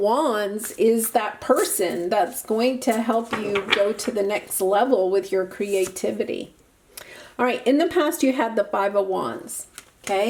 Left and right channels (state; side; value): identical; both; correlation 1.00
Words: is that person that's going to help you go to the next level with your creativity. All right, in the past you had the 5 of Wands,